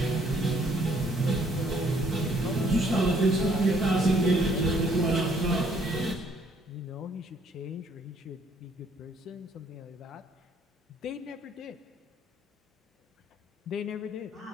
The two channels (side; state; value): both; normal; correlation 0.65